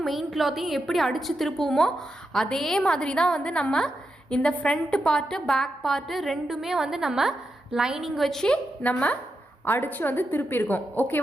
மெயின் கிளாத்தையும் எப்படி அடித்து திருப்புவோமோ அதே மாதிரி தான் வந்து நம்ம இந்த ஃப்ரண்ட் பார்ட்டு பேக் பார்ட்டு ரெண்டுமே வந்து நம்ம லைனிங் வச்சு நம்ம அடித்து வந்து திருப்பியிருக்கோம்.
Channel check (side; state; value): both; normal; correlation 0.86